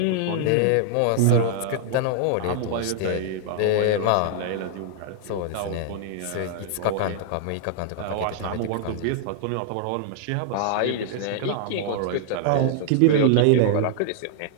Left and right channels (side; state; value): both; different; correlation -0.01